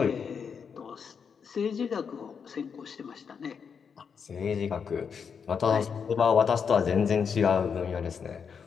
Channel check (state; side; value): quieter; right; 6.5 dB